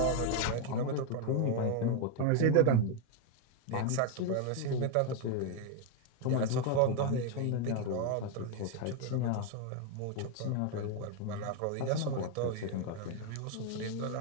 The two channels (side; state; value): both; different; correlation 0.01